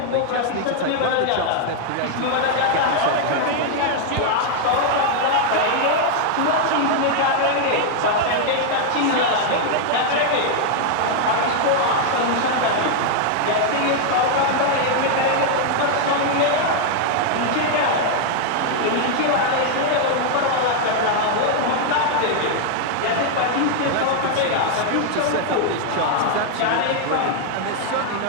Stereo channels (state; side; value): different; both; correlation 0.00